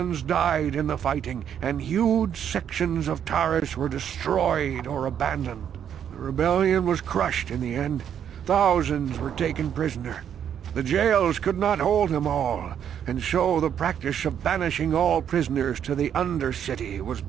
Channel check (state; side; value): quieter; left; 9.0 dB